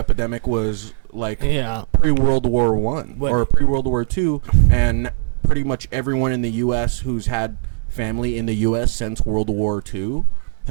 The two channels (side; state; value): left; silent; 67 dB below the other